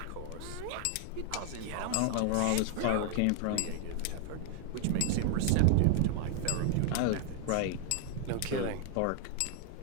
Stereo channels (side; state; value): both; different; correlation 0.00